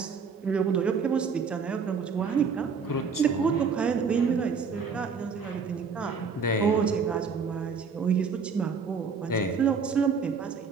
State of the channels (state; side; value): quieter; left; 5.5 dB